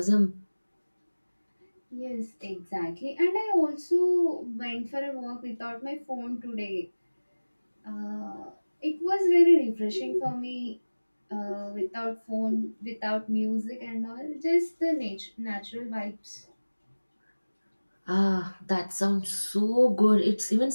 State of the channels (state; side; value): inverted; both; correlation -1.00